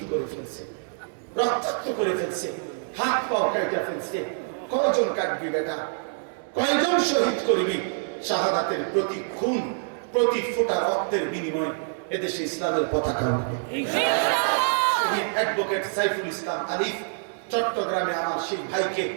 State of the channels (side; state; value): left; silent; digital silence